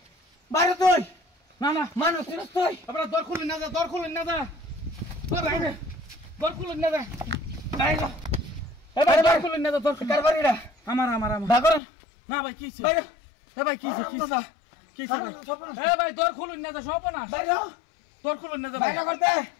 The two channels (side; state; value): right; drops out; at 11.8 s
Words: বাইরে তুই না না মানুষ চিনিস তুই আপনারা দর খুলুন না যা দর খুলুন না যা দর খুলুন না যা বাইরে এবার দর খুলুন না যা দর কার বাড়িটা আমার ভাগর না ভাই কি ছিল বাইরে ভাই কি ছিল কি ছিল ভাই দর খুলুন না যা সব না বাইরে দর খুলুন না যা বাইরে করতে